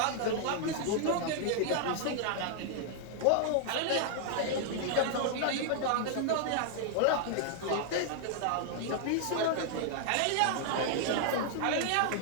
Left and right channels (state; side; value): different; both; correlation -0.01